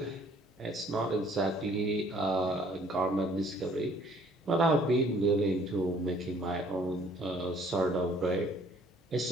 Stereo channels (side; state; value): both; normal; correlation 0.59